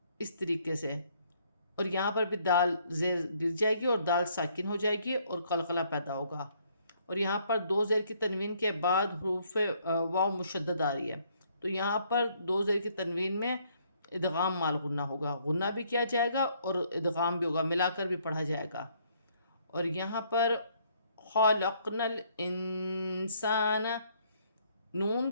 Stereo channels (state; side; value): inverted; both; correlation -0.67